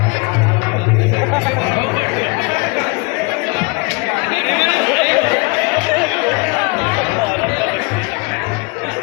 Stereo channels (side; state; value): right; quieter; 28.3 dB